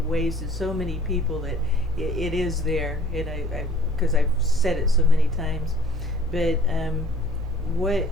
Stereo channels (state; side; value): normal; both; correlation 0.52